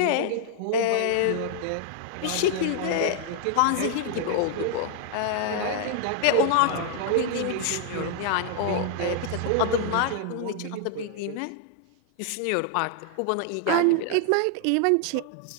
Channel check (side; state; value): both; different; correlation 0.00